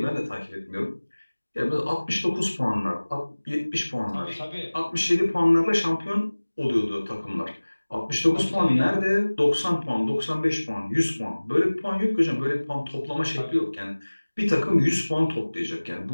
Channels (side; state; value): both; inverted; correlation -1.00